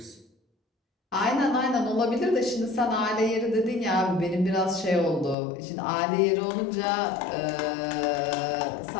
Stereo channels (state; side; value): drops out; right; at 5.4 s